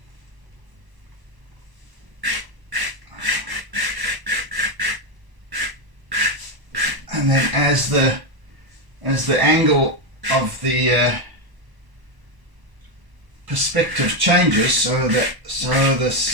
And then as the angle of the perspective changes, so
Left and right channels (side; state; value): left; late; 1.0 ms